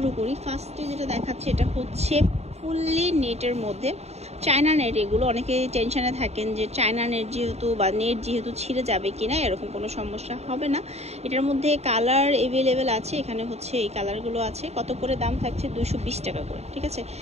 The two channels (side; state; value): left; late; 0.31 ms